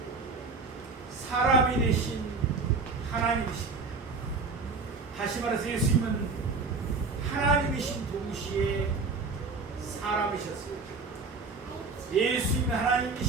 사람이 되신 하나님이십니다. 다시 말해서 예수님은 하나님이신 동시에 사람이셨습니다. 예수님은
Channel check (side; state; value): left; quieter; 4.1 dB